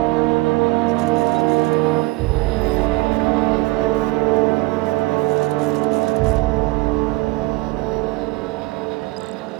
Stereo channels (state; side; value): quieter; left; 22.1 dB